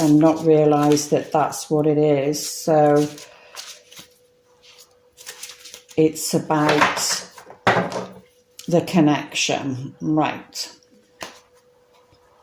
not realise that that's what it is. So it's about the connection, right?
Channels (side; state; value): both; identical; correlation 1.00